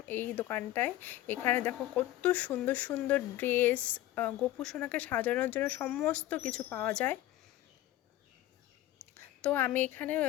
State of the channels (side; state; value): right; quieter; 14.7 dB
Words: এই দোকানটায়। এখানে দেখো কত সুন্দর সুন্দর ড্রেস, গোপু সোনাকে সাজানোর জন্য সমস্ত কিছু পাওয়া যায়। তো আমি এখানে